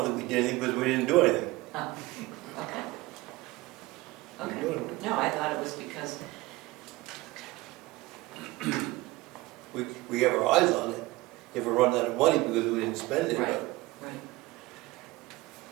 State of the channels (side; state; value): left; quieter; 20.2 dB